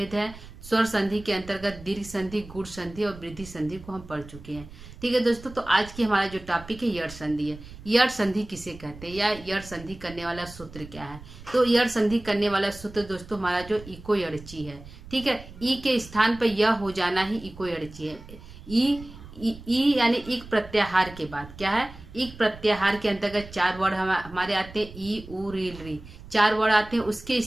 है। स्वर संधि के अंतर्गत दीर्घ संधि, गुण संधि और वृद्धि संधि को हम पढ़ चुके हैं। ठीक है दोस्तों, तो आज की हमारा जो टॉपिक है यड़ संधि है। यड़ संधि किसे कहते हैं या यड़ संधि करने वाला सूत्र क्या है। तो यड़ संधि करने वाला सूत्र दोस्तों हमारा जो इको यड़ची है। ठीक है, ई के स्थान पर यह हो जाना ही इको यड़ची है। ई यानी इक प्रत्याहार के बाद क्या है, इक प्रत्याहार के अंतर्गत 4 वर्ड हमारे आते हैं। ई उ री री 4 वर्ड आते हैं। उसके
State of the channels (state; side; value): noise; right; rumble, 17 dB below the sound